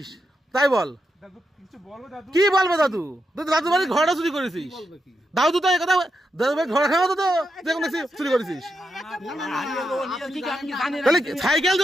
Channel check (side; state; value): both; normal; correlation 0.85